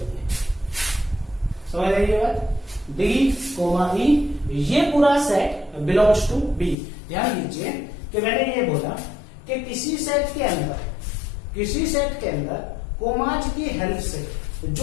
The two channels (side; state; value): right; drops out; at 6.8 s